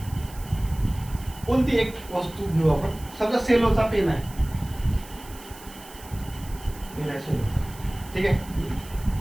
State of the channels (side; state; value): right; noise; hiss, 19 dB below the sound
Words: कोणती एक वस्तू घेऊ आपण. समजा सेलोचा पेन आहे. ठीक आहे